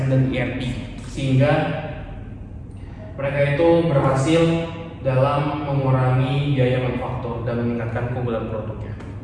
dan ERP, sehingga mereka itu berhasil dalam mengurangi biaya manufaktur dan meningkatkan keunggulan produknya.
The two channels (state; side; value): identical; both; correlation 1.00